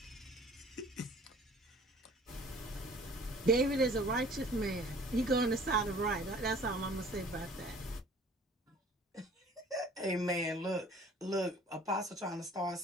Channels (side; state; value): both; normal; correlation 0.51